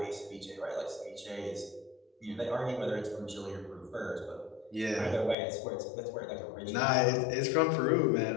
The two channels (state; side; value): drops out; right; at 5.4 s